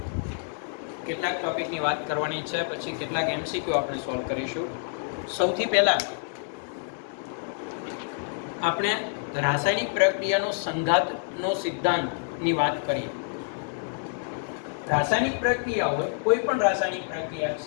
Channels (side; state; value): right; silent; 60 dB below the other